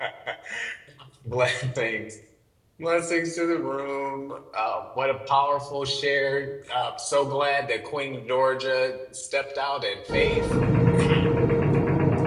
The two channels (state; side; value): identical; both; correlation 1.00